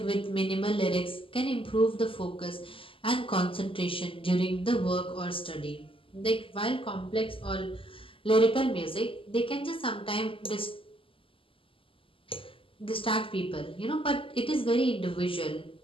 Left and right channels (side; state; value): right; late; 0.26 ms